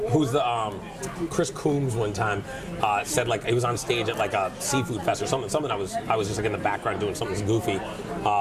who's the, Chris Coombs one time said like, he was on stage at like a seafood fest or something I was just like in the background doing something goofy.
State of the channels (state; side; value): identical; both; correlation 1.00